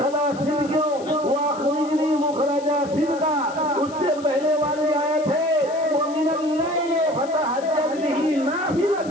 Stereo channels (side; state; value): left; noise; hiss, 21 dB below the sound